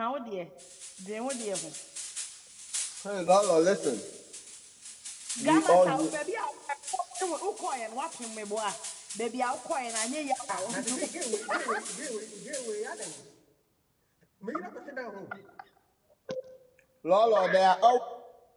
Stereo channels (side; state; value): both; identical; correlation 1.00